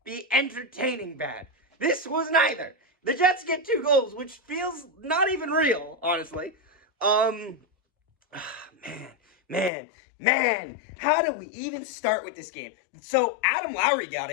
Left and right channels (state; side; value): drops out; right; at 9.7 s